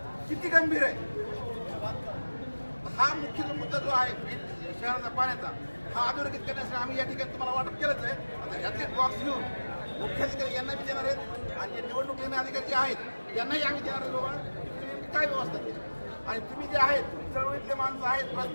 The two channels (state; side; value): inverted; both; correlation -1.00